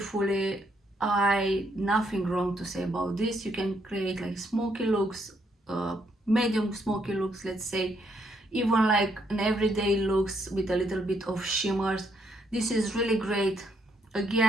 nothing wrong to say about this. You can create like smoky looks, medium smoky looks, let's say, even like an everyday looks with a little bit of shimmers. This is really great.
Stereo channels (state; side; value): normal; both; correlation 0.74